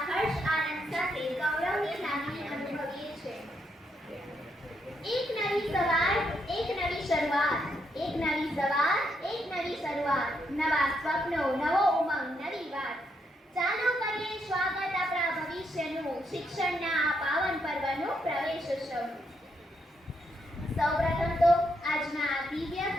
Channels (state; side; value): normal; both; correlation 0.78